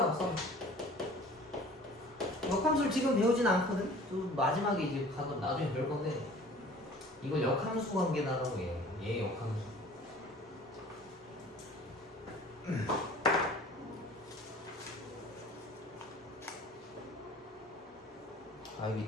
써. 역함수를 지금 배우진 않거든. 또 마지막에 이제 가서 나중에 배울 건데, 이걸 역함수 관계다라고 해요. 얘 역함수. 아 여기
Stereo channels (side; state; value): both; normal; correlation 0.47